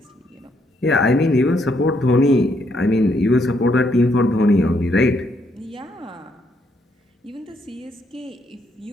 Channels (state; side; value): normal; both; correlation 0.74